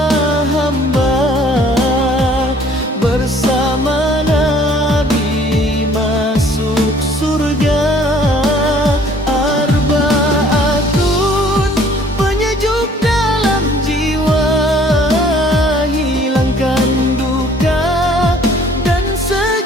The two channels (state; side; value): normal; both; correlation 0.56